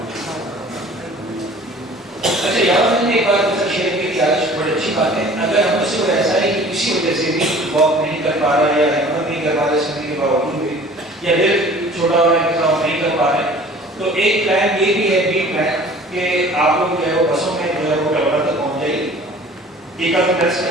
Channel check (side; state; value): both; normal; correlation 0.47